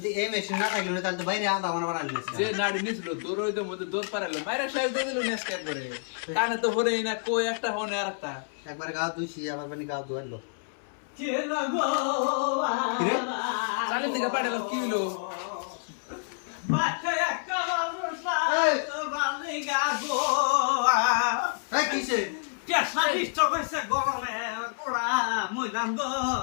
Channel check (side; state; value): right; silent; 59 dB below the other